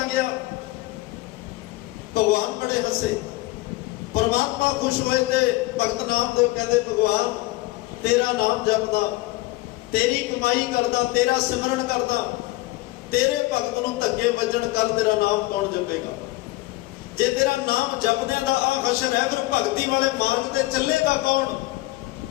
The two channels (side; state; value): right; quieter; 19.6 dB